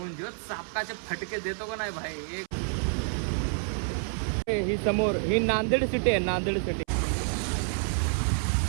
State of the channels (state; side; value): silent; left; 59 dB below the other